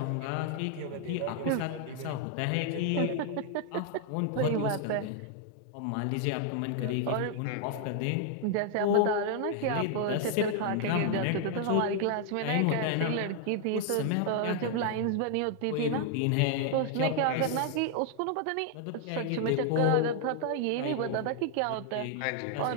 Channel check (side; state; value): both; different; correlation 0.00